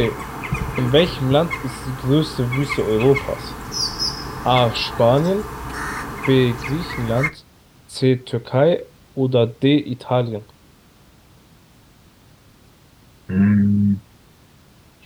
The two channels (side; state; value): both; identical; correlation 1.00